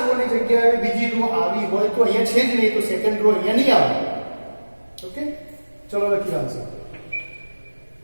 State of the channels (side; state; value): both; inverted; correlation -1.00